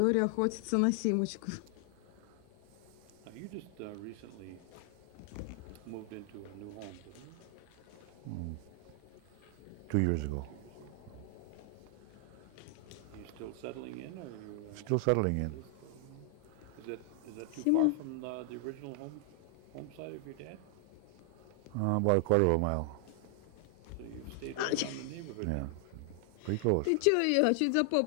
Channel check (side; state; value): both; different; correlation 0.00